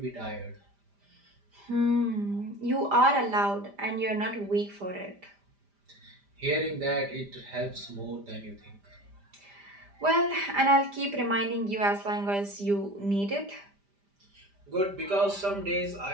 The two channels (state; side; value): late; left; 5.0 ms